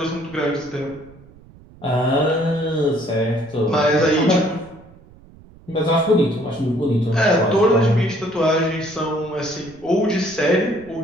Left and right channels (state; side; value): noise; right; rumble, 23 dB below the sound